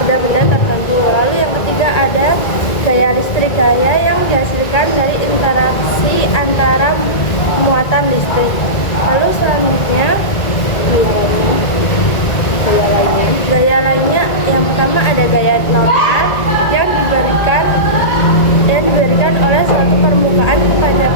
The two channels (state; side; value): late; right; 1.9 ms